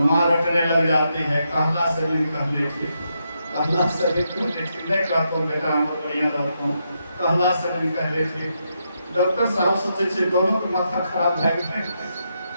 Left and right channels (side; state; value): both; inverted; correlation -0.82